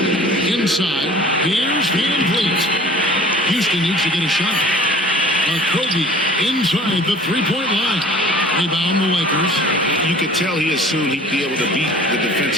Inside. Here's Van Vliet. Houston needs to get a shot. Okogie inside the three-point line. Rebound the Lakers. You could tell he assumed he'd be able to beat the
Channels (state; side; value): normal; both; correlation 0.47